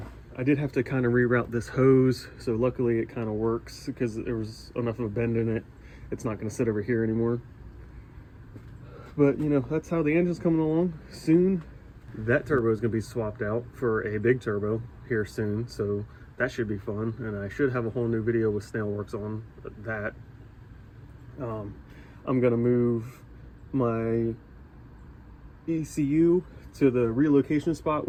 did have to kind of reroute this hose, so luckily it kind of works because there was enough of a bend in it. It's not going to sit over here anymore. But you know, that's how the engine's coming along. Soon that turbo is going to be swapped out for a big turbo here soon, so that should be fun, and I should have a whole new video with Snailworks on that. I'm going to move my ECU to the relocation spot,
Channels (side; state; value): both; identical; correlation 1.00